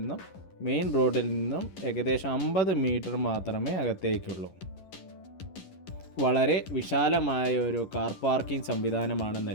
മെയിൻ റോഡിൽ നിന്നും ഏകദേശം 50 മീറ്റർ മാത്രമേ അകത്തേക്കുള്ളൂ. വളരെ വിശാലമായ ഒരു കാർ പാർക്കിംഗ് സംവിധാനമാണ്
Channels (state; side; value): late; right; 11 ms